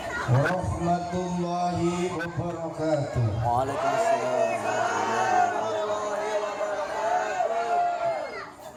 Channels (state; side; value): identical; both; correlation 1.00